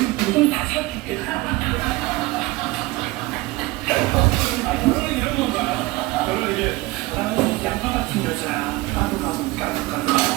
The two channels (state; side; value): quieter; left; 20.9 dB